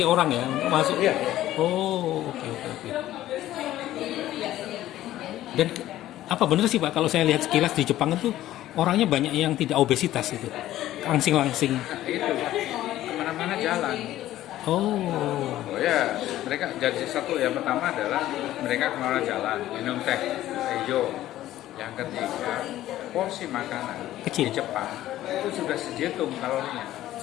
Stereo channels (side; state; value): right; quieter; 14.0 dB